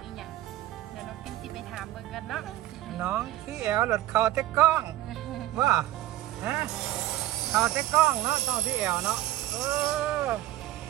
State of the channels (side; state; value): left; quieter; 14.7 dB